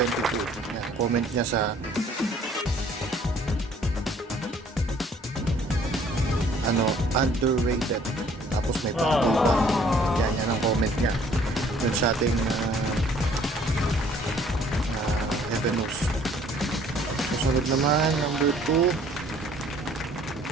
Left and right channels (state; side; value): normal; both; correlation 0.58